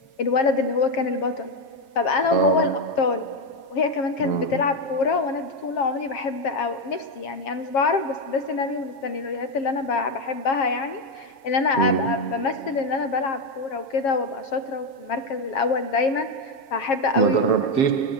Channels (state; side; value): late; right; 7.4 ms